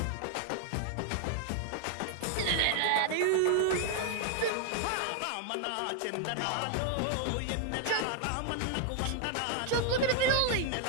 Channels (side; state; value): both; different; correlation 0.00